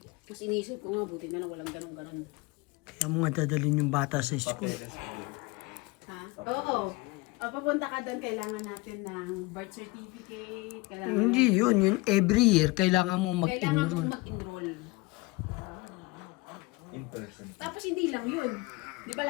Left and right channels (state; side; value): quieter; right; 23.2 dB